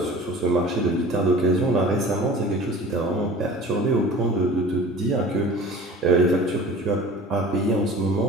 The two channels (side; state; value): both; normal; correlation 0.42